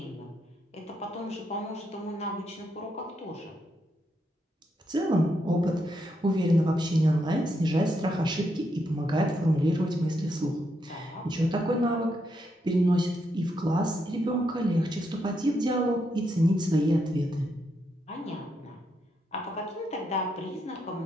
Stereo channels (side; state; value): both; normal; correlation 0.80